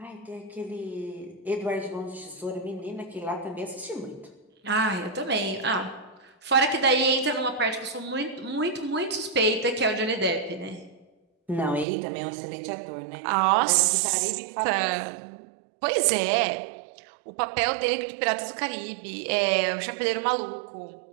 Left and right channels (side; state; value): left; drops out; at 11.9 s